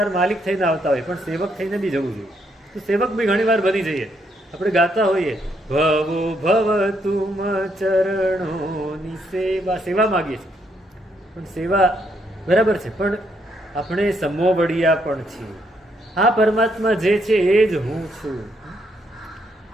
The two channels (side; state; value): both; normal; correlation 0.74